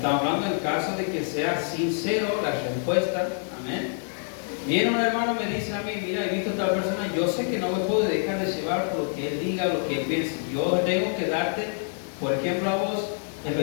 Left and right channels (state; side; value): silent; right; 61 dB below the other